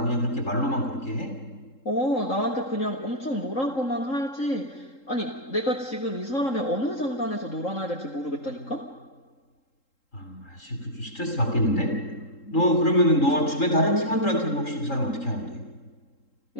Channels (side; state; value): right; late; 3.8 ms